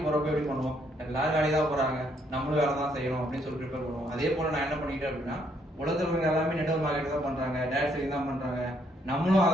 போறப்ப எப்படி பண்ணுவோம், எல்லாரும் வேலைக்கு தான் போறாங்க, நம்மளும் வேலை தான் செய்யணும் அப்படின்னு சொல்லி ப்ரிப்பேர் பண்ணுவோம். அதே போல நான் என்ன பண்ணிக்கிட்டேன் அப்படின்னா, உலகத்துல இருக்கவங்க எல்லாருமே நெட்வொர்க் மார்க்கெட் தான் பண்றாங்க, டேட் செல்லிங் தான் பண்றாங்க, நம்மளும்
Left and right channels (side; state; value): both; normal; correlation 0.70